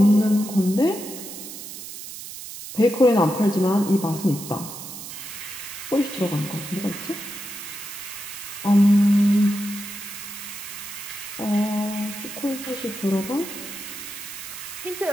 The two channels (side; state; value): right; noise; hiss, 11 dB below the sound